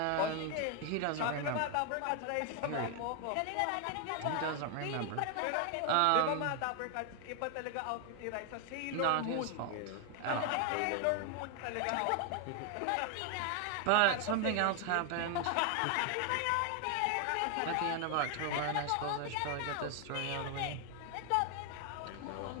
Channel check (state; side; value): different; both; correlation 0.01